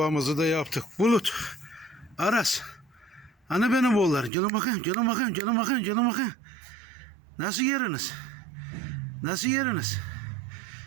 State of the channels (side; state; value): left; drops out; at 4.3 s